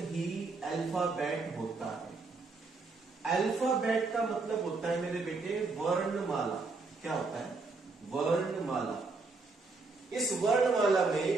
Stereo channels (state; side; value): quieter; left; 3.8 dB